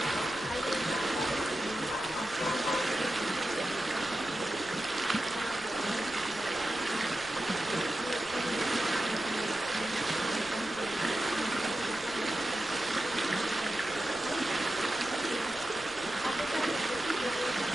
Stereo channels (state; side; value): noise; left; rumble, 21 dB below the sound